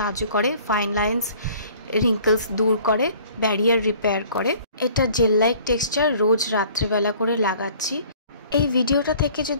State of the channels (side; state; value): both; inverted; correlation -0.52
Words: করে, ফাইন লাইন্স, রিঙ্কলস দূর করে, ব্যারিয়ার রিপেয়ার করে। এটা জেল লাইক টেক্সচার, রোজ রাত্রেবেলা করে লাগাচ্ছি। এই ভিডিওটা থেকে